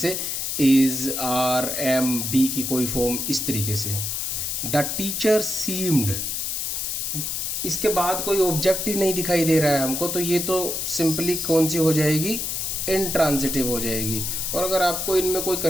इज, आर, एम, बी की कोई फॉर्म, इस तरीके से। द टीचर सीम्ड, इसके बाद कोई ऑब्जेक्ट ही नहीं दिखाई दे रहा है हमको, तो ये तो सिंपली कौन सी हो जाएगी? इंट्रांजिटिव हो जाएगी। और अगर आपको इनमें कोई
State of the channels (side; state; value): left; noise; hiss, 2 dB below the sound